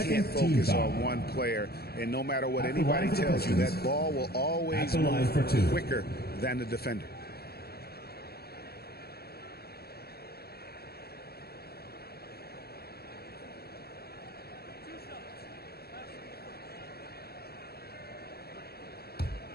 focus on one player, and no matter what anybody tells you, that ball will always move quicker than the defender.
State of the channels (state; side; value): late; right; 0.46 ms